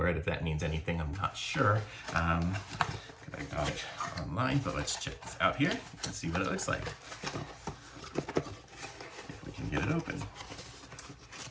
it. If that means anything, I'm not sure. I got it online, but let's check this out here and see what it looks like. If we can get it open.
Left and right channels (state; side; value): identical; both; correlation 1.00